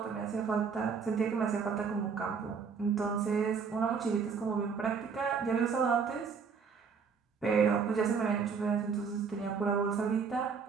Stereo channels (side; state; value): left; quieter; 5.8 dB